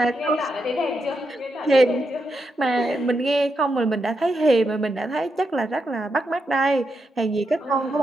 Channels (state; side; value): normal; both; correlation 0.84